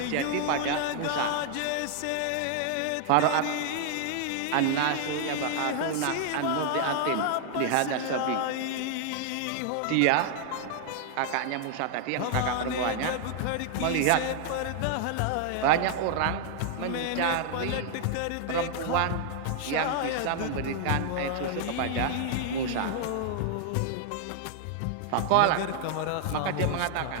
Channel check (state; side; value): different; both; correlation 0.00